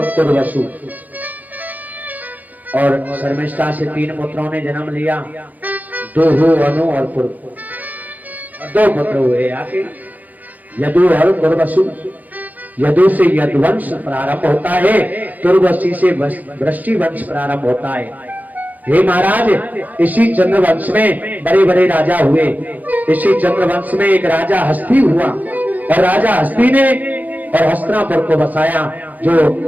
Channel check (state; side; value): late; left; 0.081 ms